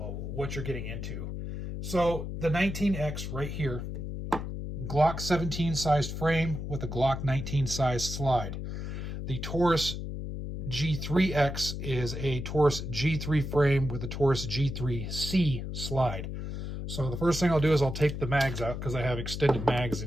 what you're getting into. So the 19X right here, Glock 17 sized frame with a Glock 19 sized slide. The Taurus G3X is a Taurus G3 frame with a Taurus G3C slide. So the first thing I'll do is I'll take the mags out because I have extended mags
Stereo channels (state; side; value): noise; left; hum, 5 dB below the sound